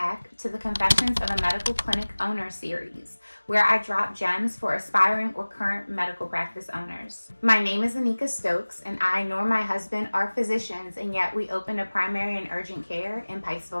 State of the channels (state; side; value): inverted; both; correlation -1.00